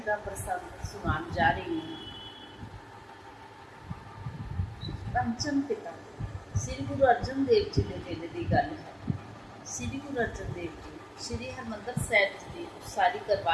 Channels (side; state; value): both; identical; correlation 1.00